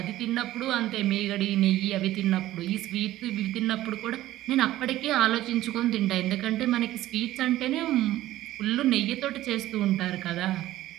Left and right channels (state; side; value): quieter; left; 14.9 dB